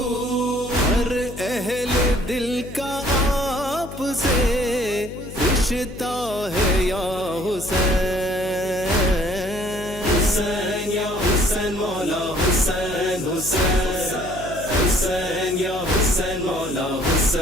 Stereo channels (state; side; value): noise; left; hum, 13 dB below the sound